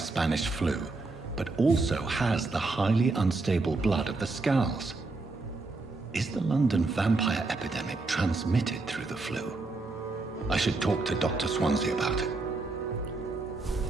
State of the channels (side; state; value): left; quieter; 3.5 dB